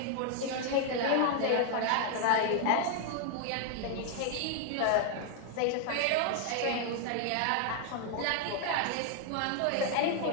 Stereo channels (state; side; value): different; both; correlation 0.00